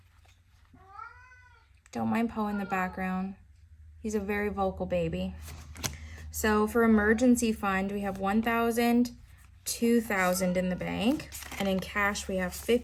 Don't mind Poe in the background. He's a very vocal baby. So for emergency fund, we have 1,000, 2,000 in the bank. And in cash, we have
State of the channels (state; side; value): identical; both; correlation 1.00